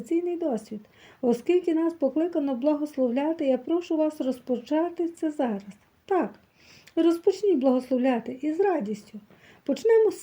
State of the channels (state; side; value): identical; both; correlation 1.00